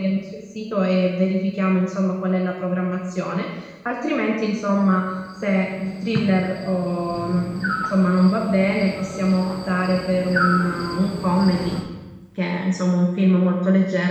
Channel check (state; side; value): identical; both; correlation 1.00